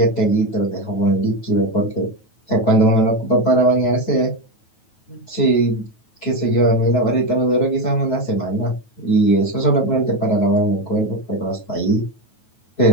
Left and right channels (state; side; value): late; right; 9.2 ms